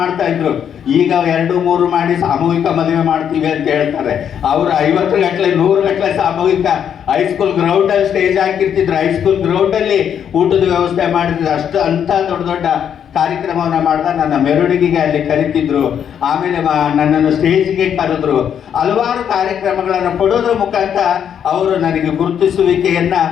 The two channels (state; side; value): quieter; right; 8.6 dB